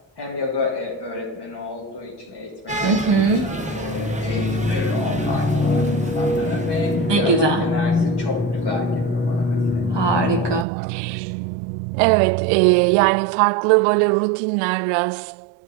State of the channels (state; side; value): drops out; left; at 10.7 s